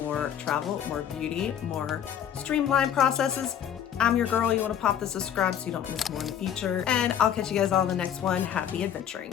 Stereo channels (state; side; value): quieter; right; 9.4 dB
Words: travel, more beauty, more streamlined processes, I'm your girl. You want to pop the subscribe so you don't miss more in the future, and I'll catch you guys all in the next one. Happy adventuring.